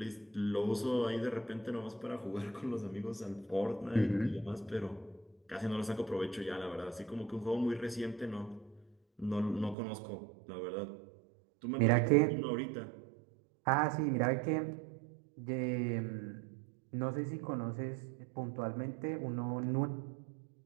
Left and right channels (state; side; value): drops out; left; at 9.8 s